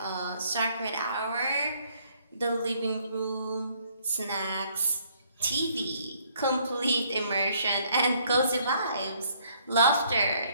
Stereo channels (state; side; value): inverted; both; correlation -0.66